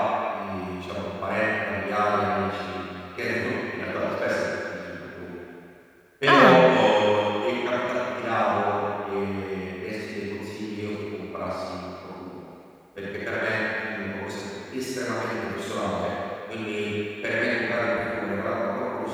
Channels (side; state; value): both; identical; correlation 1.00